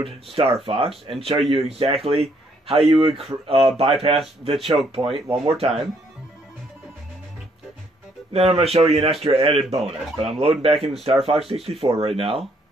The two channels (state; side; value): normal; both; correlation 0.69